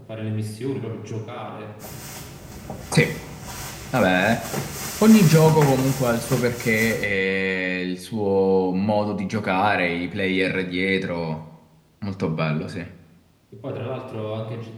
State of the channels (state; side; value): identical; both; correlation 1.00